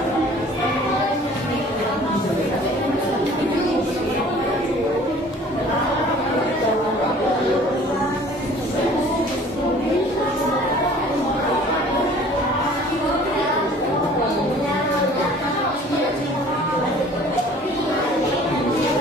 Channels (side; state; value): both; normal; correlation 0.50